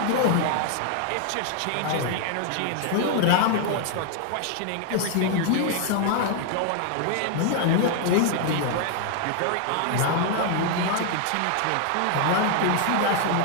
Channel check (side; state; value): both; different; correlation 0.00